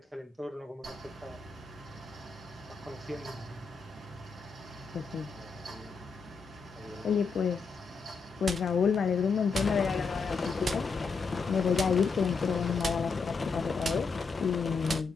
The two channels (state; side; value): quieter; right; 4.9 dB